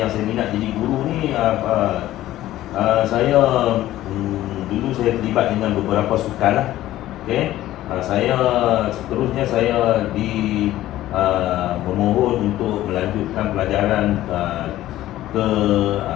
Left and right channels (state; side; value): quieter; right; 14.5 dB